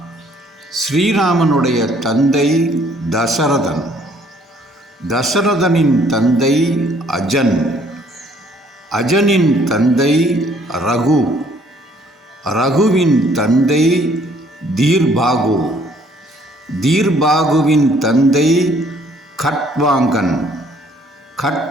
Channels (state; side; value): normal; both; correlation 0.62